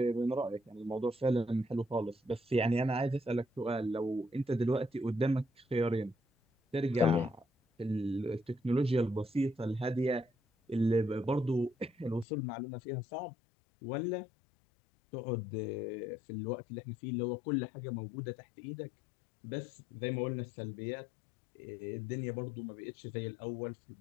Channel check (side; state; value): right; drops out; at 12.2 s